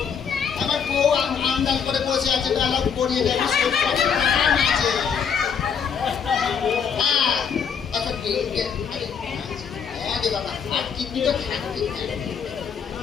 আমার বউ আন্দাজ করে বসে আছে বেলা পড়িয়ে দেবে আছে। হ্যাঁ আচ্ছা হ্যাঁ রে বাবা আর কিডনি তো থাকবে।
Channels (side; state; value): right; quieter; 6.9 dB